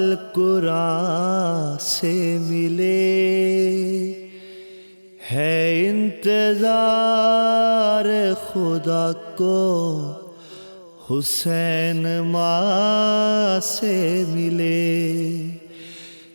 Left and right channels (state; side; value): inverted; both; correlation -1.00